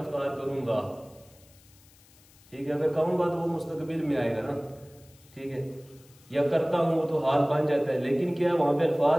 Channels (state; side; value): noise; left; hiss, 27 dB below the sound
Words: افطار کروں گا، ٹھیک ہے، اگر کہوں گا تو وہ مستقبل میں آئے گا نا، ٹھیک ہے، یا کرتا ہوں تو حال بن جاتا ہے، لیکن کیا وہاں پہ